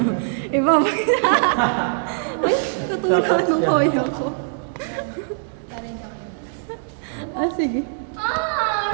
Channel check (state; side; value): silent; left; 64 dB below the other